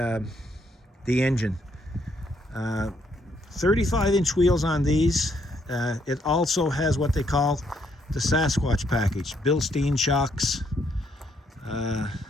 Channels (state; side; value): normal; both; correlation 0.72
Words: engine. 35-inch wheels on these. It also has what they call the Sasquatch package, Bilstein shocks,